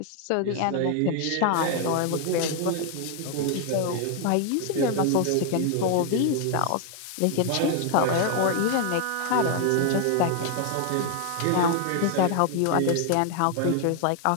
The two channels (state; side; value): different; both; correlation 0.00